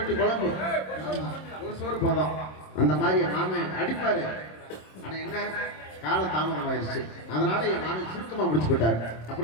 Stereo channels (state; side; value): late; right; 26 ms